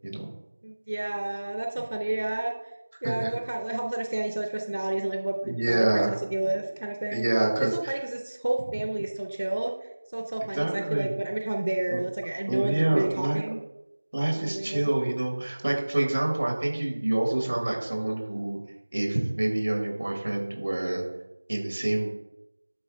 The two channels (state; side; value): inverted; both; correlation -1.00